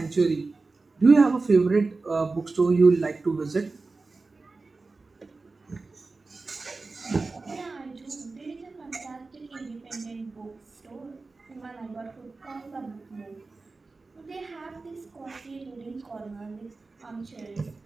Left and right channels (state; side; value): quieter; left; 3.7 dB